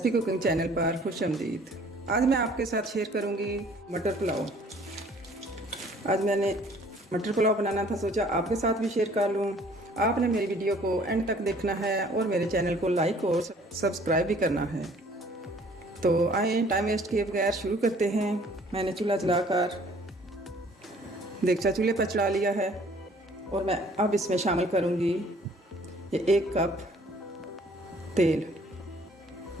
कुकिंग चैनल पर खुश आमदीद। आज मैं आपके साथ शेयर करूंगी मटर पुलाव। आज मैंने मटर पुलाव बनाना था, सोचा आपके साथ भी शेयर कर लूं। आपने मेरी वीडियो को एंड तक देखना है और मेरे चैनल को लाइक और सब्सक्राइब भी करना है। तो आए टाइम वेस्ट किए बगैर शुरू करते हैं। मैंने चूल्हा जलाकर देगचा चूल्हे पर चढ़ा लिया है और मैं अब इसमें शामिल करूंगी ये 1 कप तेल।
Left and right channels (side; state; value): both; normal; correlation 0.56